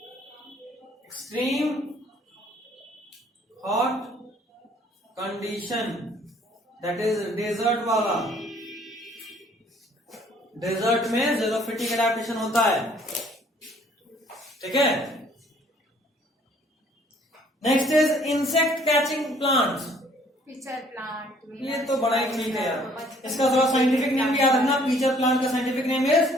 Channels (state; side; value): normal; both; correlation 0.59